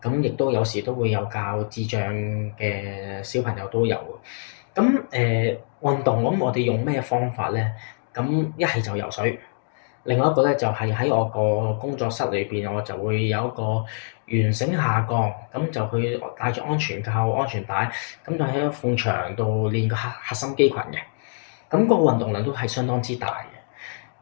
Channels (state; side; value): silent; right; digital silence